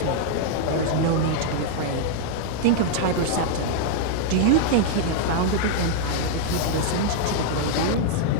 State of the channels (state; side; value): different; both; correlation -0.01